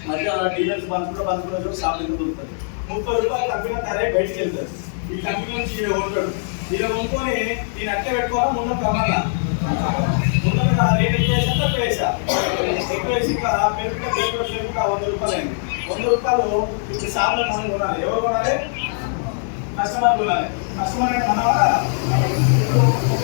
మధ్య డీలర్స్ బంధువులు షాప్ ఎందుకు దొరుకుతుంది. 30 రూపాయలు కంపెనీ తయారై బయటికి వెళ్తారు. ఈ కంపెనీ నుంచి ఈయన ఉంటాడు, ఈయన కొనుక్కొని ఈయన అట్టే పెట్టుకోవాలా ముందు కమ్మాలా ముందు రేట్ ఎక్కువ వేసా ఎక్కువ వేసి పెరుగుతా 100 రూపాయలు అయింది. 100 రూపాయలు ఇప్పుడు షాప్లో మనం కొనాలి. ఎవరు కొనాలి? కస్టమర్ కొనాలి. కస్టమర్ అంటే మన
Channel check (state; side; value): silent; right; digital silence